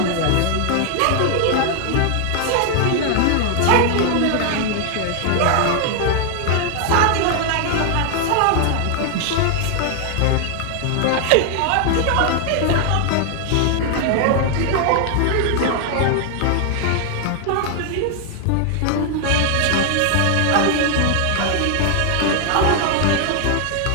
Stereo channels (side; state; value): both; different; correlation 0.00